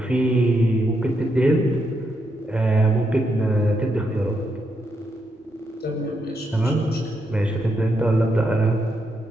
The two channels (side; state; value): both; normal; correlation 0.81